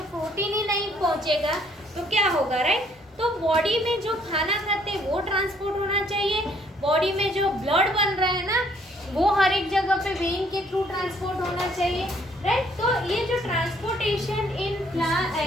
प्रोटीन ही नहीं पहुंचेगा तो क्या होगा, राइट। तो बॉडी में जो खाना खाते हैं वो ट्रांसपोर्ट होना चाहिए, बॉडी में जो ब्लड बन रहा है ना, वो हर एक जगह पे वेन के थ्रू ट्रांसपोर्ट होना चाहिए, राइट। तो ये जो transportation in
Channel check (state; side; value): normal; both; correlation 0.64